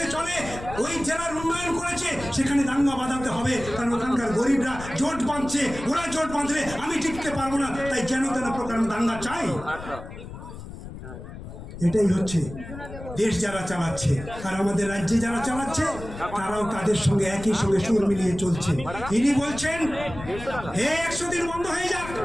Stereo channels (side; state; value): left; noise; rumble, 12 dB below the sound